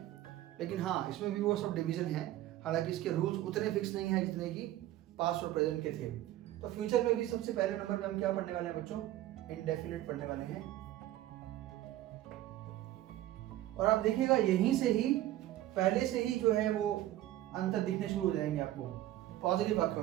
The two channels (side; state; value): left; quieter; 14.4 dB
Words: लेकिन हाँ, इसमें भी वो सब डिवीजन है, हालांकि इसके रूल्स उतने फिक्स नहीं है जितने कि पास्ट और प्रेजेंट के थे। तो फ्यूचर में भी सबसे पहले नंबर में हम क्या पढ़ने वाले हैं बच्चों, इंडेफिनिट पढ़ने वाले हैं। और आप देखिएगा यहीं से ही पहले से ही जो है वो अंतर दिखने शुरू हो जाएंगे आपको पॉजिटिव